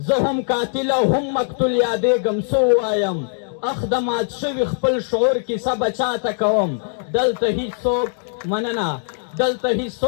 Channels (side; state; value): right; silent; digital silence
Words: زه هم قاتل او هم مقتول یادېږم، څه ووایم اخ د مات شوي خپل شعور کیسه بچاته کوم. دلته هیڅوک مننه، دلته